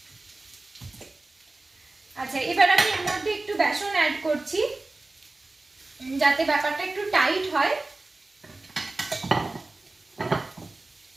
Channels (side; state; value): left; quieter; 3.1 dB